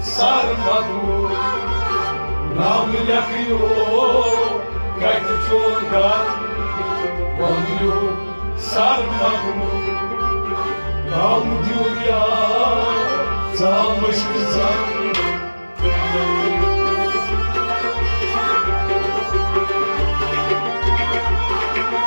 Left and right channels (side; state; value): both; inverted; correlation -1.00